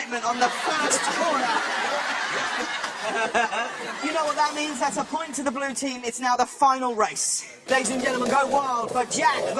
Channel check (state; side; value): identical; both; correlation 1.00